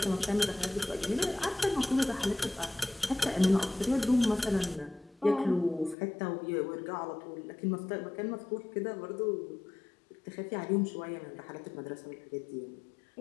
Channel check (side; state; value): right; drops out; at 6.0 s